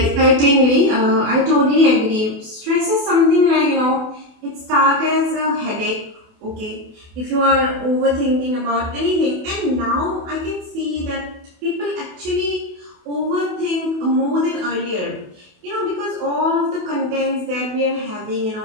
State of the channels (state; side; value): late; left; 28 ms